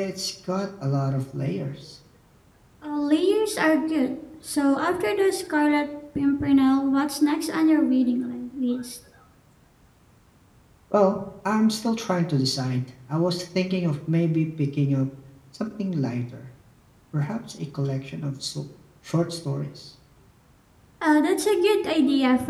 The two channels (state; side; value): identical; both; correlation 1.00